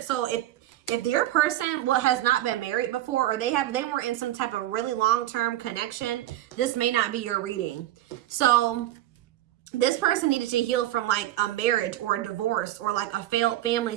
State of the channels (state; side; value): quieter; left; 14.2 dB